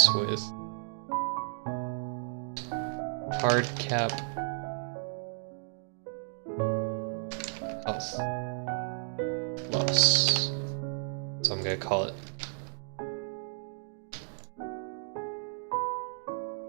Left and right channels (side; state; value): left; silent; 56 dB below the other